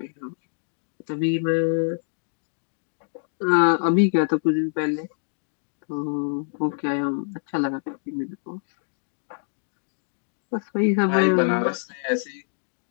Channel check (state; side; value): silent; right; digital silence